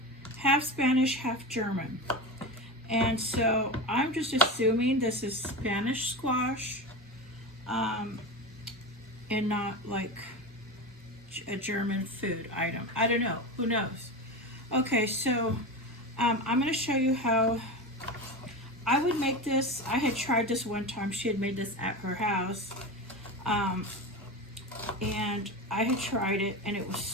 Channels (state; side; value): normal; both; correlation 0.23